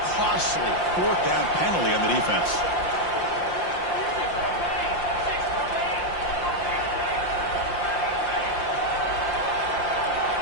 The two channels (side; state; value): right; late; 5.7 ms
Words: costly 4th down penalty on the defense.